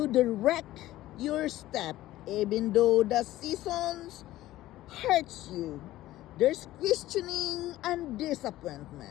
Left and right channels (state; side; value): quieter; right; 15.5 dB